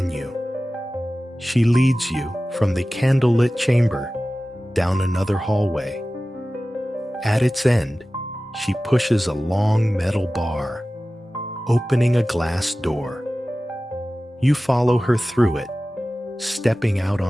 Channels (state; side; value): normal; both; correlation 0.96